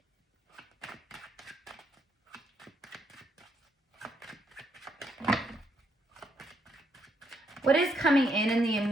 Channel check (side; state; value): both; normal; correlation 0.75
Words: what is coming in the